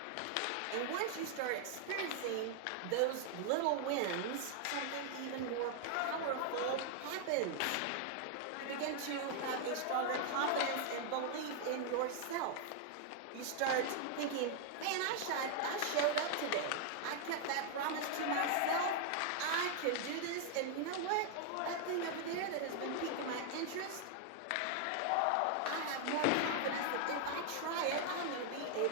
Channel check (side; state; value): both; different; correlation 0.00